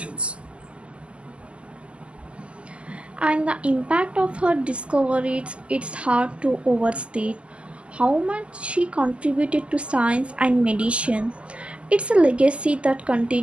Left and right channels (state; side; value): late; left; 0.055 ms